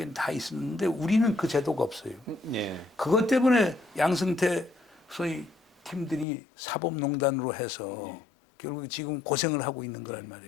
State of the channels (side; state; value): right; drops out; at 6.2 s